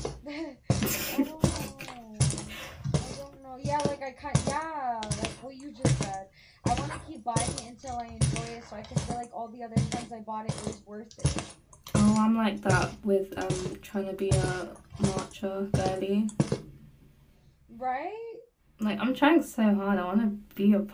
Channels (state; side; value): identical; both; correlation 1.00